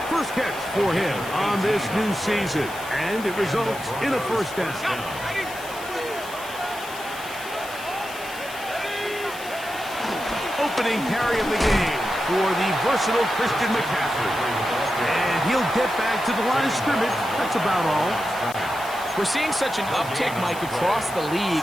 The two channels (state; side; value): noise; left; hiss, 15 dB below the sound